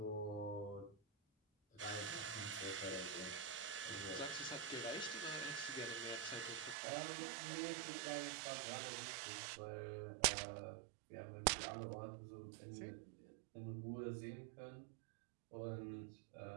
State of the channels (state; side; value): drops out; left; at 6.8 s